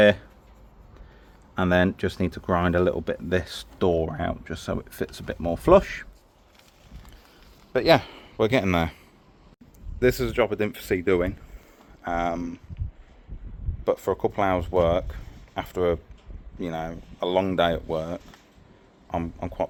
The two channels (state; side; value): identical; both; correlation 1.00